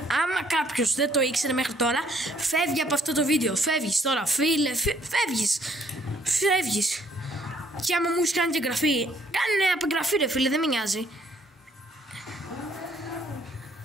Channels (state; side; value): normal; both; correlation 0.65